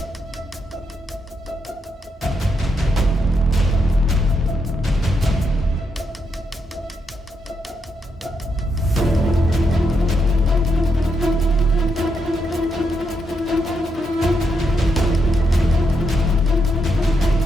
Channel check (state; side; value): normal; both; correlation 0.81